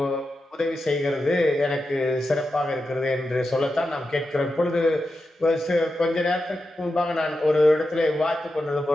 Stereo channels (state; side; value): normal; both; correlation 0.90